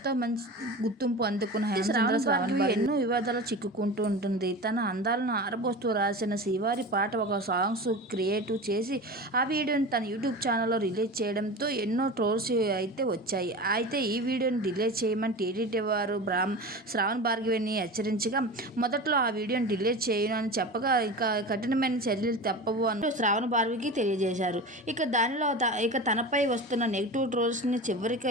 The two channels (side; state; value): both; normal; correlation 0.30